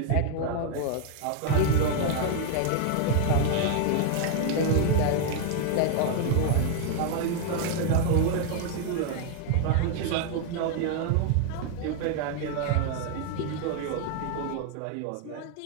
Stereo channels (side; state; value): both; different; correlation 0.00